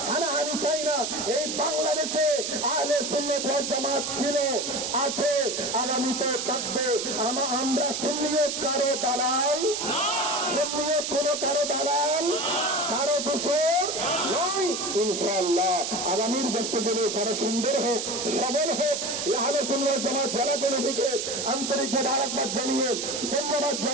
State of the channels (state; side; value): noise; right; hiss, 3 dB below the sound